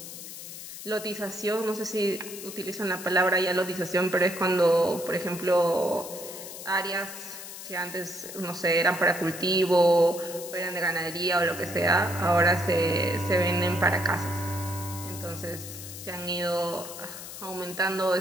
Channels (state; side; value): noise; left; hiss, 11 dB below the sound